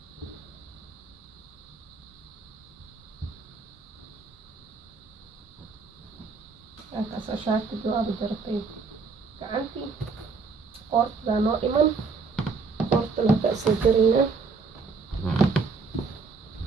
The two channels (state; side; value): quieter; left; 4.6 dB